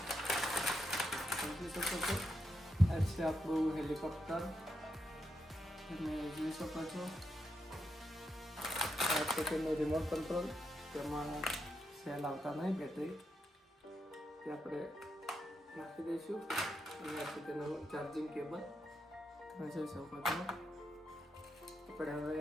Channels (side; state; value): both; normal; correlation 0.83